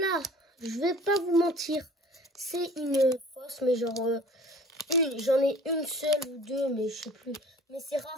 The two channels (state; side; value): normal; both; correlation 0.47